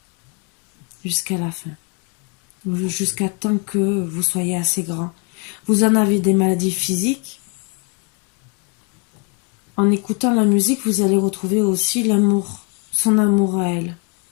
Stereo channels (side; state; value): right; quieter; 33.2 dB